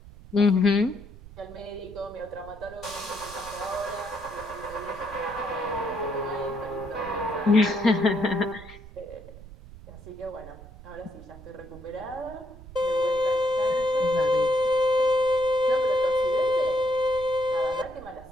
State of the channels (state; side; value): noise; right; rumble, 18 dB below the sound